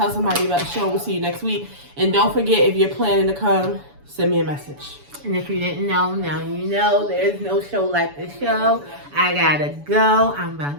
somebody about the show. We'll see you next week. And don't forget, if you're planning to come, send me a message. And if you didn't know, now you know. There's no show like this show. I gotta go. I'm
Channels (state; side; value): late; left; 7.0 ms